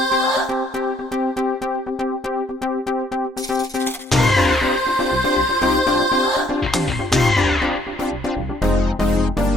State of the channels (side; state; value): both; normal; correlation 0.67